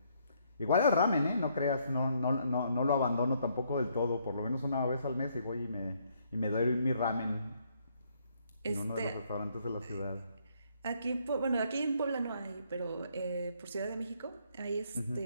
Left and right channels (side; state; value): both; inverted; correlation -0.70